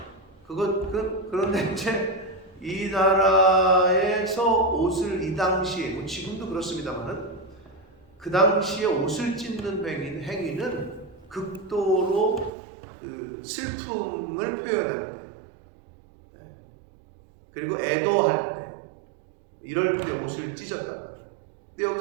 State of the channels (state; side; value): drops out; left; at 12.5 s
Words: 그런데 이제 이 나라에서 옷을 이 당시에 뭐 지금도 그렇습니다만은 그 당시에 옷을 찢는 행위는 극도로 슬픔을 표현할 때, 그리고 애도할 때, 이럴 때 옷을 찢었단 말이에요. 근데